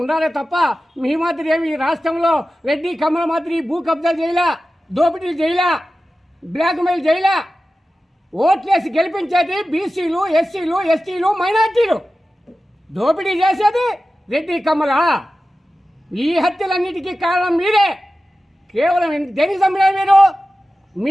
ఉండాలే తప్ప మీ మాదిరి ఏమి ఈ రాష్ట్రంలో రెడ్డి కమల మాదిరి భూ కబ్జా చేయలా, దోపిడీలు చేయలా, బ్లాక్మెయిల్ చేయలా. ఓట్లేసి గెలిపించేది బీసీలు, ఎస్సీలు, ఎస్టీలు, మైనార్టీలు. దోపిడీ చేసేది రెడ్డి కమల. ఈ హత్యలన్నిటికీ కారణం మీరే. కేవలం దేనికి చంపినారు మీరు?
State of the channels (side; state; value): both; normal; correlation 0.94